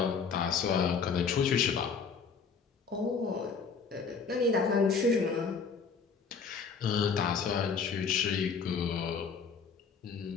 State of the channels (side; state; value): right; quieter; 5.6 dB